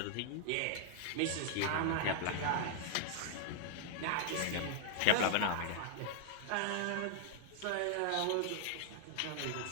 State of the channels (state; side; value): different; both; correlation -0.01